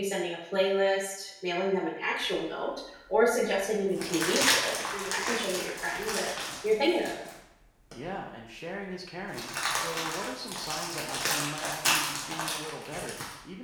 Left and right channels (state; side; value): identical; both; correlation 1.00